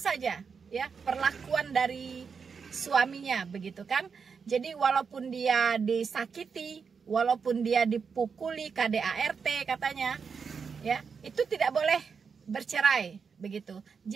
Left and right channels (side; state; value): left; quieter; 5.9 dB